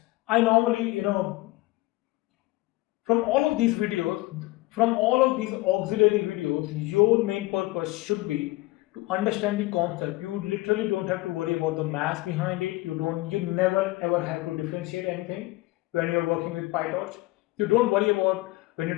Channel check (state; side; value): quieter; right; 20.0 dB